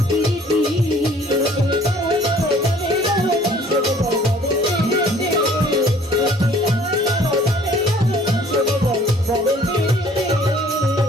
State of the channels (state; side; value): normal; both; correlation 0.55